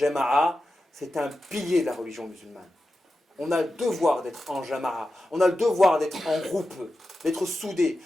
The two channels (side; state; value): both; normal; correlation 0.91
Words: c'est un pilier de la religion musulmane. On a le devoir d'être en jama'a, on a le devoir d'être en groupe, d'être soudés,